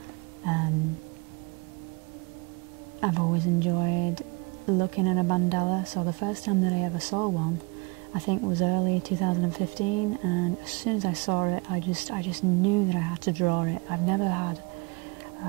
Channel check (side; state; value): left; quieter; 27.8 dB